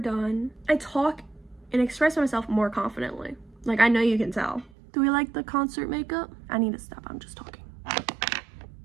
I talk and express myself more confidently. Like, I know you can tell. Do we like the concert makeup? I need to stop. I'm just talking.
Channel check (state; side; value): drops out; left; at 4.7 s